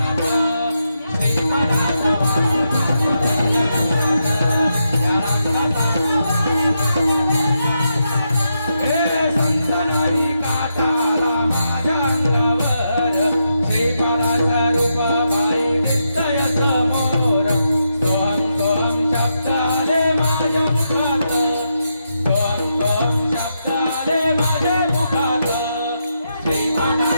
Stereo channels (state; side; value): inverted; both; correlation -0.84